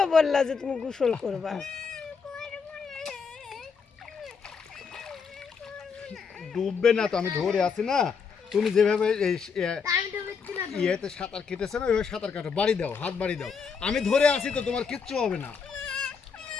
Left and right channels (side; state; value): right; quieter; 5.7 dB